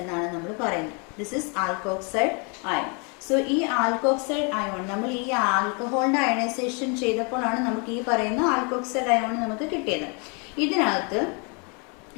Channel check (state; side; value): quieter; right; 34.8 dB